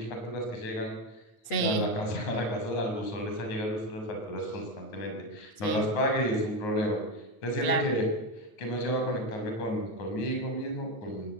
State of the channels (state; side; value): late; right; 8.3 ms